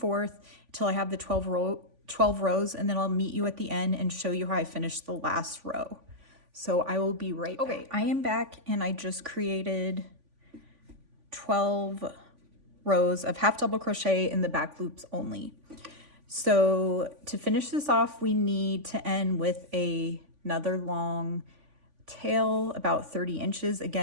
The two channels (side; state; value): left; late; 3.5 ms